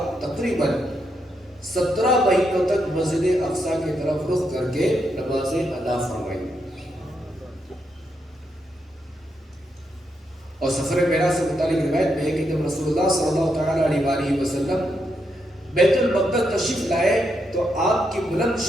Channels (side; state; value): both; normal; correlation 0.81